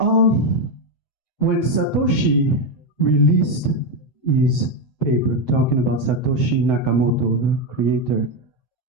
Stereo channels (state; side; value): late; right; 7.8 ms